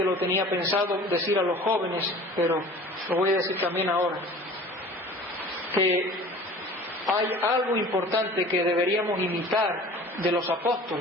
lo tenía pensado decir a los jóvenes, pero lo voy a decir también ahora, que hay algo importante que deberíamos imitar de los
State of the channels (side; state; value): both; normal; correlation 0.44